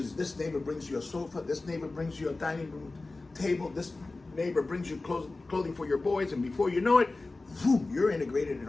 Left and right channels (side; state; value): right; quieter; 3.3 dB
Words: this neighbor brings you a sofa, this neighbor brings you a dining room table, this neighbor brings you clothing for your boys, and before you know it, boom, you're integrated in